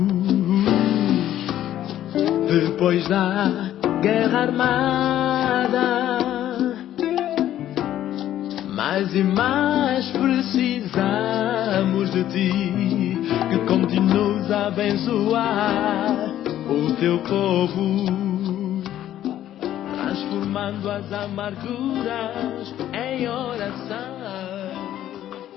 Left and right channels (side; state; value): right; quieter; 12.2 dB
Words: Depois da guerra armada, mais e mais precisamos de ti, que continues a abençoar o teu povo, transformando as amarguras em oração.